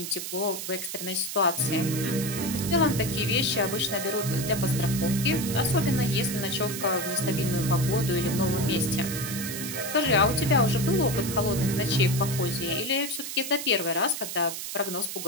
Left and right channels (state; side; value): noise; right; hiss, 6 dB below the sound